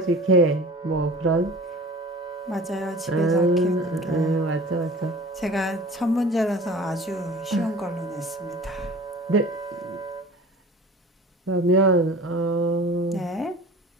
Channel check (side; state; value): both; normal; correlation 0.41